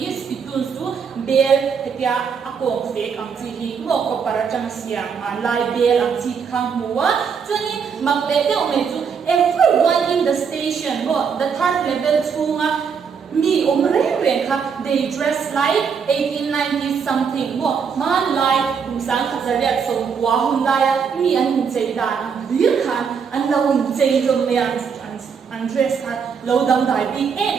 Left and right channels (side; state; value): left; quieter; 6.4 dB